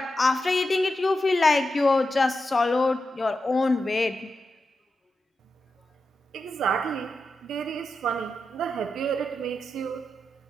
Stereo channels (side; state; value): both; normal; correlation 0.89